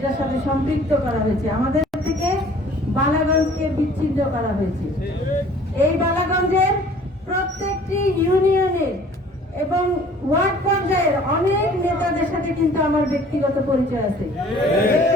সাথে সম্পৃক্ত করা হয়েছে। আমাদের থেকে বালাগঞ্জকে বিচ্ছিন্ন করা হয়েছে। এই বালাগঞ্জের প্রত্যেকটি ইউনিয়নের এবং ওয়ার্ড পর্যায়ের অনেক নেতাদের সাথে কিন্তু আমার ব্যক্তিগত পরিচয় আছে,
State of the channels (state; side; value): normal; both; correlation 0.51